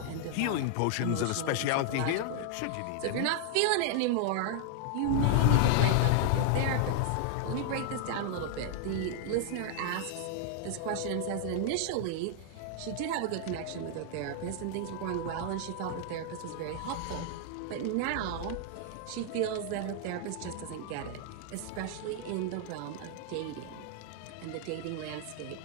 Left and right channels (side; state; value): both; different; correlation -0.01